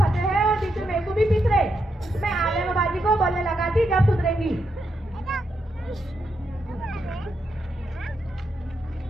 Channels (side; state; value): both; normal; correlation 0.82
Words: हैं और बीच में मेरे को भी पीस रहे। मैं आलम बाजी को बोलने लगा थी जब सुधरेंगी।